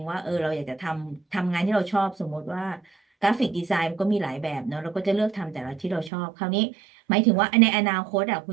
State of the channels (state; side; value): drops out; left; at 6.1 s